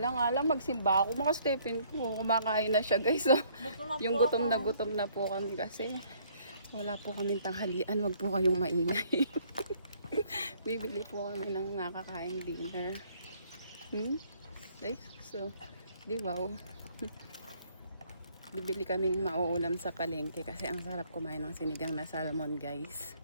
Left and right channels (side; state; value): both; inverted; correlation -0.63